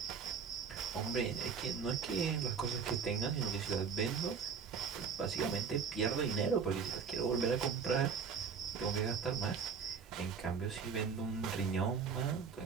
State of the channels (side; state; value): left; quieter; 6.1 dB